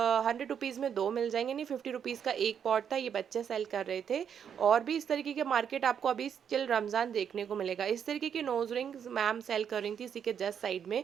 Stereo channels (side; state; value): left; quieter; 8.0 dB